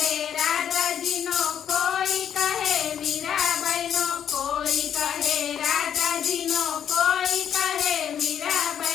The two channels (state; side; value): quieter; right; 9.1 dB